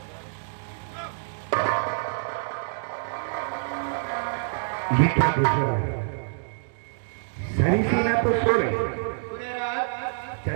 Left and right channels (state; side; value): silent; left; digital silence